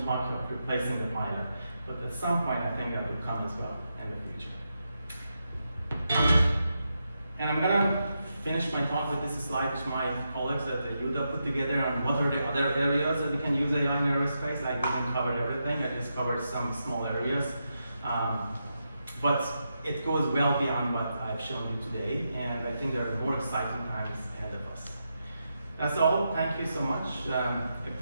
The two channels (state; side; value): inverted; both; correlation -0.85